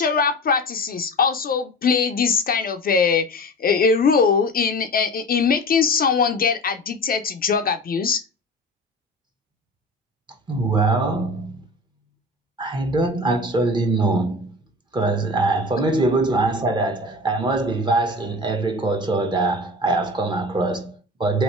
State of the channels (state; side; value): normal; both; correlation 0.34